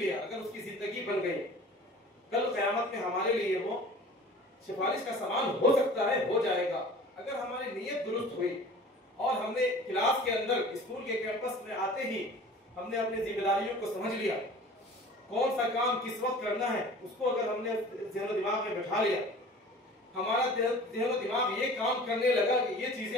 अगर उसकी जिंदगी बन गई, कल क़यामत में हमारे लिए वो सिफारिश का सामान हो सकता है, हो जाएगा। अगर हमारी नीयत दुरुस्त हुई और हमने क्लास के अंदर, स्कूल के कैंपस में आते ही हमने अपनी जिम्मेदारियों को समझ लिया, कौन सा काम किस वक्त करना है, उसको अगर हमने ज़हन दिमाग में बैठा लिया, हमारा ज़हन दिमाग ये काम करने लगा कि ये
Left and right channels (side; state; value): both; normal; correlation 0.43